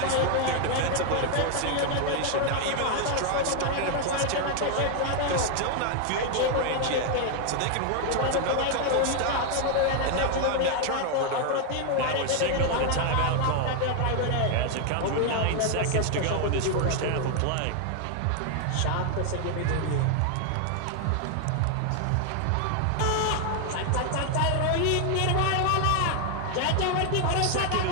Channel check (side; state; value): both; different; correlation 0.00